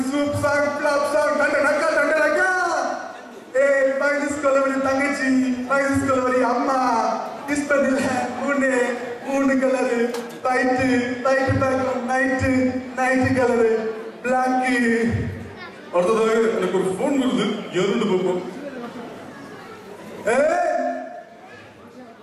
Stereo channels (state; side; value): identical; both; correlation 1.00